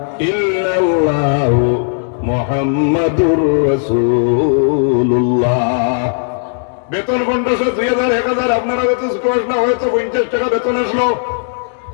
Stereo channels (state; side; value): silent; right; digital silence